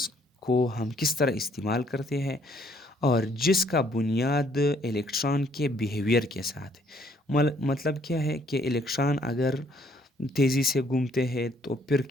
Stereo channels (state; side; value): normal; both; correlation 0.65